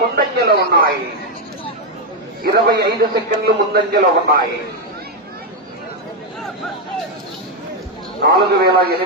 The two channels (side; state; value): both; normal; correlation 0.03